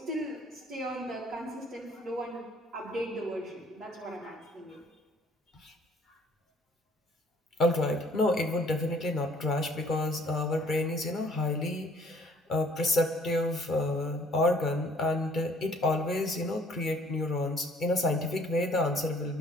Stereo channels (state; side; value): normal; both; correlation 0.58